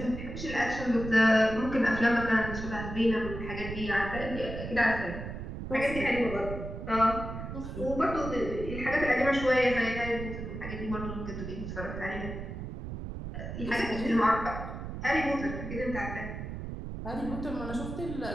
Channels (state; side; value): noise; right; rumble, 7 dB below the sound